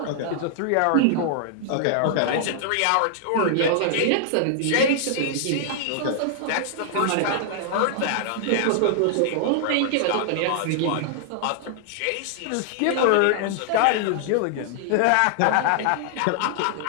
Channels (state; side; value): different; both; correlation -0.01